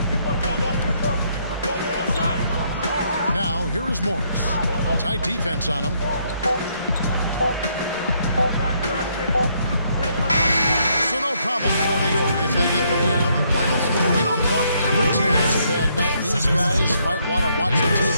Now, here is Morris. Tight defense on him. So no problem for New York if they get the win. You know, Clark, every team has a bad night, and these guys might want to watch the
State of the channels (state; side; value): inverted; both; correlation -0.72